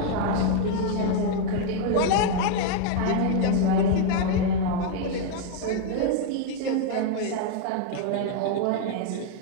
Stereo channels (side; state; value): both; different; correlation 0.00